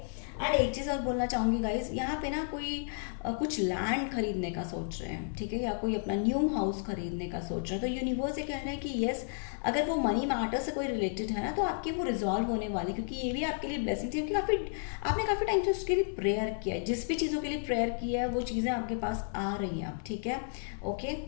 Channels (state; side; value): silent; right; digital silence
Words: एंड एक चीज़ और बोलना चाहूँगी गाइज, यहाँ पे ना कोई कुछ लैंड खरीदने का सोच रहे हैं, ठीक है, या कोई अपना न्यू हाउस खरीदने का सोच रहे हैं, तो यूनिवर्स ये कह रहे हैं कि यस, अगर वो मनी मैटर से कोई रिलेटेड है ना, तो आपकी वो रिजॉल्व होने वाली, क्योंकि ये भी आपके लिए ब्लेसिंग थी, क्योंकि आपने काफ़ी टाइम से उसके लिए प्रेयर किया है, जिस भी चीज़ों के लिए प्रेयर किया है वो चीज़ें आपके पास आ रही हैं, ठीक है। Okay,